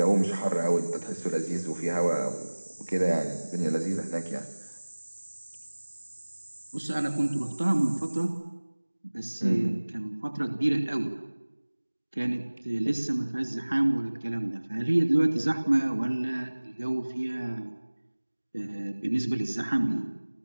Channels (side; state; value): both; inverted; correlation -1.00